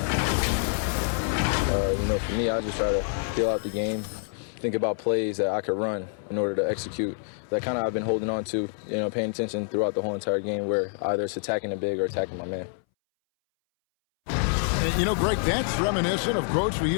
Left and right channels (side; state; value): right; silent; 60 dB below the other